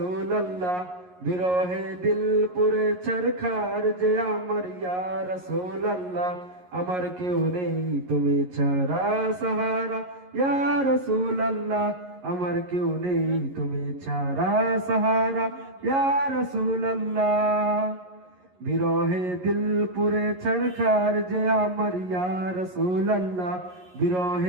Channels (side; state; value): left; late; 11 ms